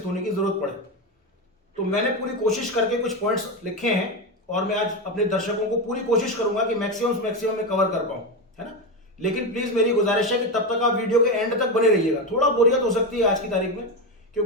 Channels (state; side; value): normal; both; correlation 0.14